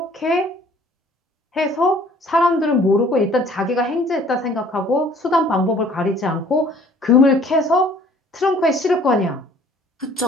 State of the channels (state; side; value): normal; both; correlation 0.55